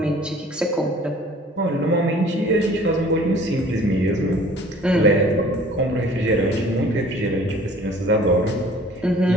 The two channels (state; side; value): normal; both; correlation 0.50